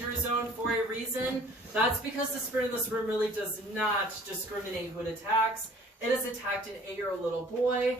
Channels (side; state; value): both; normal; correlation 0.52